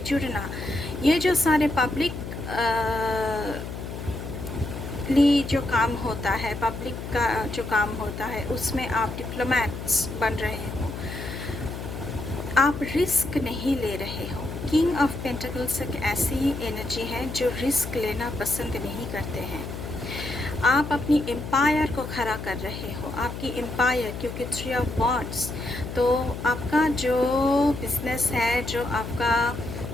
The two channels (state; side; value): noise; left; hum, 8 dB below the sound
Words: जुड़ना, ये जो सारे पब्लिक जो काम होता है, पब्लिक का जो काम होता है, उसमें आप डिप्लोमेट्स बन रहे हो। आप रिस्क नहीं ले रहे हो। किंग ऑफ पेंटिकल्स एक ऐसी एनर्जी है जो रिस्क लेना पसंद नहीं करते हैं। आप अपनी एम्पायर को खड़ा कर रहे हो, आपकी एम्पायर, क्योंकि 3 ऑफ वॉन्ड्स, तो आपका जो बिजनेस है, जो आपका